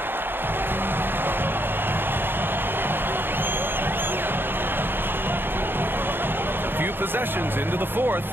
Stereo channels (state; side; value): late; left; 0.10 ms